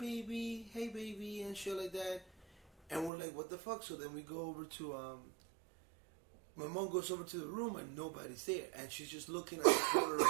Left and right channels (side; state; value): left; drops out; at 3.1 s